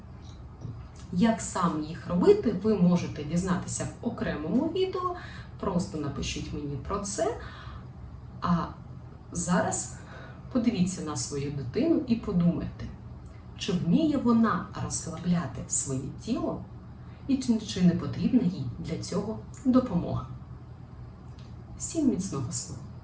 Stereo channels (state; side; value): identical; both; correlation 1.00